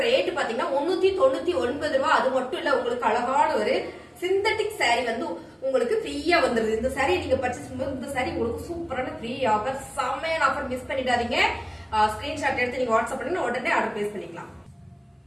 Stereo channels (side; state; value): both; identical; correlation 1.00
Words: ரேட் பாத்தீங்கன்னா 399 ரூபாய். அது மட்டும் இல்ல உங்களுக்கு அழகான ஒரு சிந்தட்டிக் சாரி வந்து உங்களுக்கு ஃப்ரீயா வந்துருது. இந்த சாரி நீங்க பர்ச்சேஸ் பண்ணும்போது இந்த சாரி உங்களுக்கு சூப்பரான ஃப்ரீ ஆஃபர், செமையான ஆஃபர். மிஸ் பண்ணிடாதீங்க. ஸ்கிரீன்ஷாட் எடுத்து நீங்க வாட்ஸ்அப் பண்ணி உடனே ஆர்டர் பிளேஸ் பண்ணிக்கலாம்.